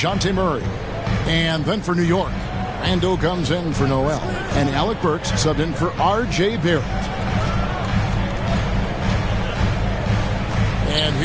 Murray. And then for New York, Randall comes in for Noel. And Alec Burks subbed in for R.J. Barrett. And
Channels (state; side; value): identical; both; correlation 1.00